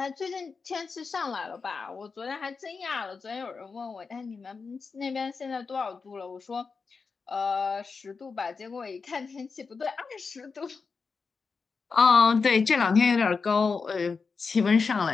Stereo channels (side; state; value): right; quieter; 4.9 dB